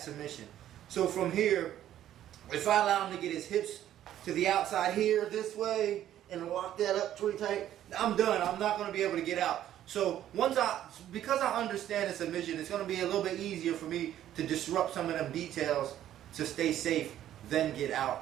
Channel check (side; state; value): left; quieter; 11.8 dB